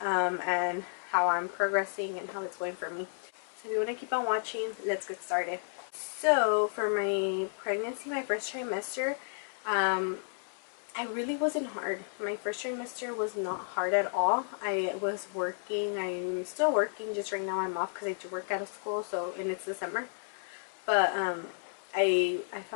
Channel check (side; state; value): right; silent; 56 dB below the other